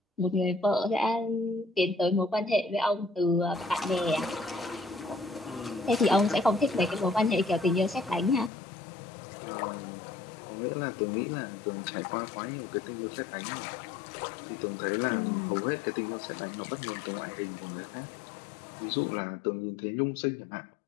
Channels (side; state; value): right; drops out; at 8.5 s